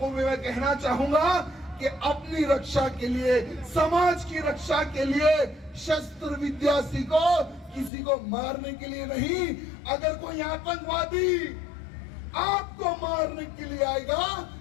भी मैं कहना चाहूंगा कि अपनी रक्षा के लिए, समाज की रक्षा के लिए शस्त्र विद्या सीखो, किसी को मारने के लिए नहीं। अगर कोई आतंकवादी आपको मारने के लिए आएगा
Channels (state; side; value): drops out; right; at 7.9 s